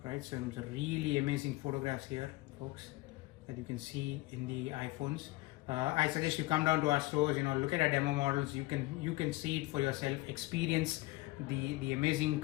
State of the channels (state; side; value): quieter; right; 20.1 dB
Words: right? So some really amazing photographs here, folks, that you can see in the iPhones. I suggest you come down to our stores, look at our demo models. You can see it for yourself, experience the amazing